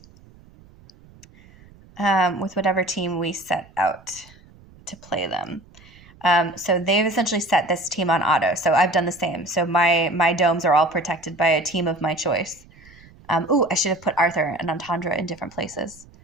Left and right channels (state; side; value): noise; right; rumble, 25 dB below the sound